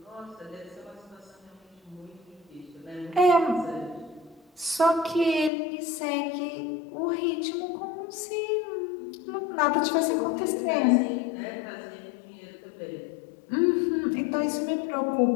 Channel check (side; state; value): right; drops out; at 5.5 s